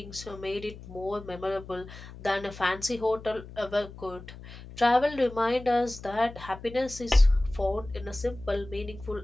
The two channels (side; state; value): left; noise; hum, 15 dB below the sound